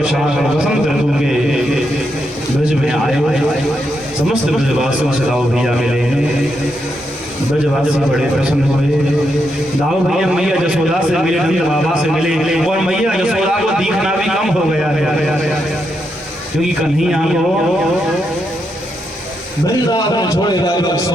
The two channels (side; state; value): both; normal; correlation 0.82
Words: वसंत ऋतु के ब्रज में आए। समस्त ब्रजवासियों से दाऊ भैया मिले हैं, ब्रजवासी बड़े प्रसन्न हुए। दाऊ भैया मैया जसोदा से मिले, नंद बाबा से मिले, और मैया जसोदा को दिखना भी कम हो गया है, क्योंकि कन्हैया को वृंदावन छोड़े जाए 100